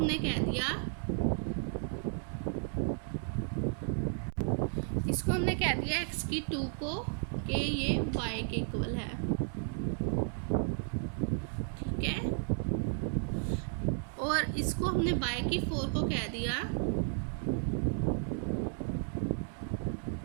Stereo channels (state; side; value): silent; left; 55 dB below the other